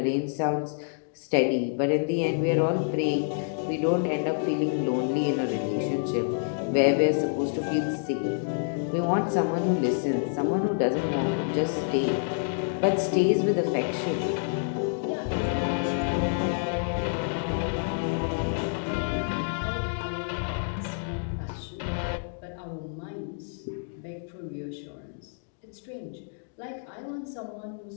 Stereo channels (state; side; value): silent; right; digital silence